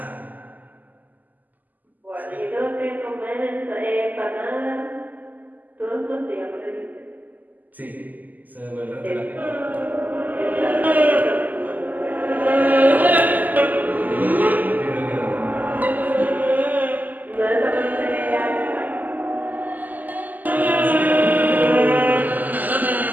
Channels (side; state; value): left; late; 0.083 ms